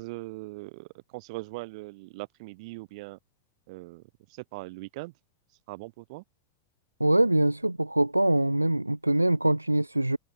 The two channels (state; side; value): inverted; both; correlation -0.98